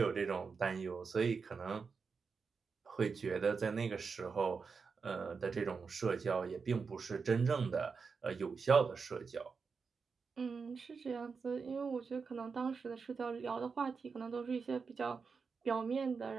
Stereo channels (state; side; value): quieter; left; 5.2 dB